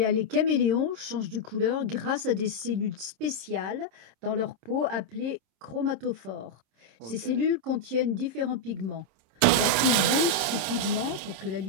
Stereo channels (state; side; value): late; left; 26 ms